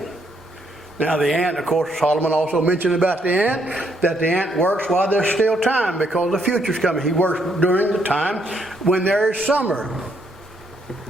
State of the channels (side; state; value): both; normal; correlation 0.73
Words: Now the ant, of course, Solomon also mentioned about the ant, that the ant works while there's still time, because the future's coming. He works during the time when there is summer.